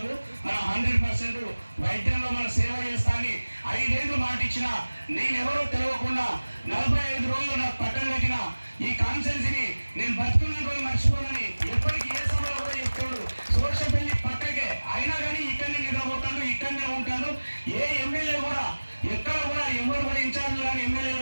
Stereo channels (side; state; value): both; inverted; correlation -1.00